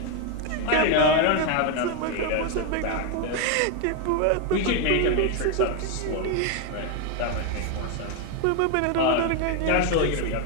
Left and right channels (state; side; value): different; both; correlation 0.01